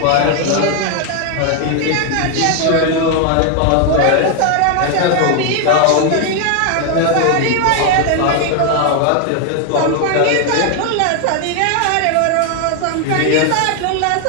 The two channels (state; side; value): different; both; correlation 0.01